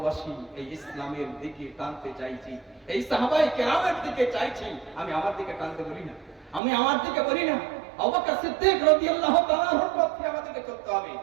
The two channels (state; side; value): drops out; left; at 6.6 s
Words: এই ইসলামের দিকে টানতে চাইছি, এই সাহাবায়ে কেরামের দিকে চাইছি। আমি আমার দিকে টানতে বলি না, আমি আমার দিকে বলি না। আবু বকর সিদ্দিক রাদিয়াল্লাহু তাআলা আনহুর পথে আমাদেরকে চলতে হবে,